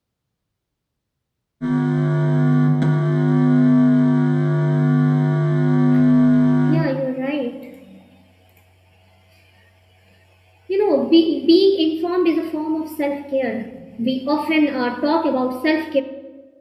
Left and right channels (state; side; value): identical; both; correlation 1.00